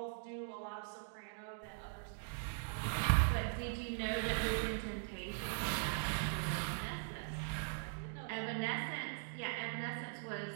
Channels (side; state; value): left; silent; digital silence